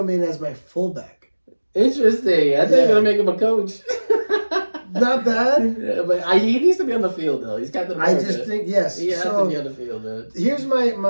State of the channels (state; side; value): inverted; both; correlation -1.00